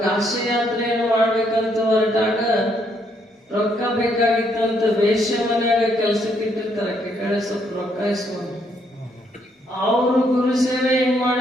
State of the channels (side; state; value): both; normal; correlation 0.72